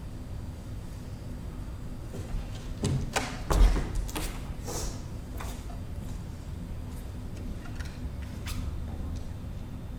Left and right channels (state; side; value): identical; both; correlation 1.00